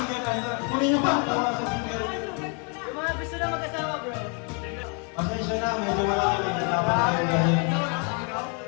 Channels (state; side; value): quieter; right; 37.3 dB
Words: na ito. Kunin niyo pa. Tawa sa singer. Yung mga gusto na mag-asawa, bro. Pasensya na. Medyo malaki. Dapat kayo gawin.